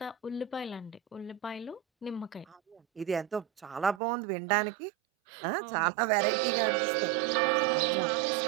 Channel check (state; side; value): drops out; left; at 4.0 s